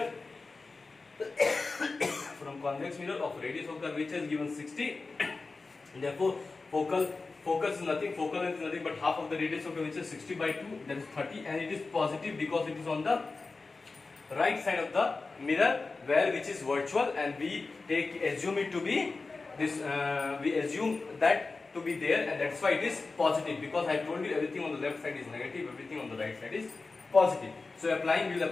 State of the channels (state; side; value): quieter; right; 3.9 dB